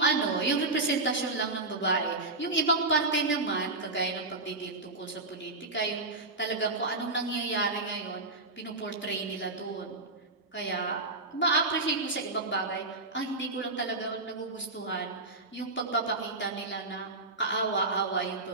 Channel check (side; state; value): left; quieter; 3.1 dB